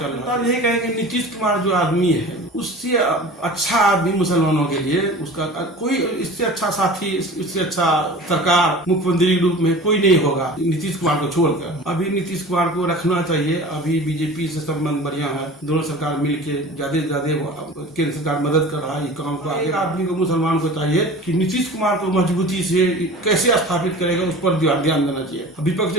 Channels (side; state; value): both; normal; correlation 0.39